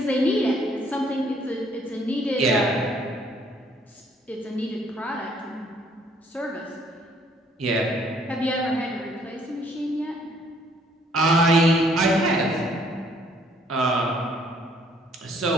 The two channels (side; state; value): both; normal; correlation 0.64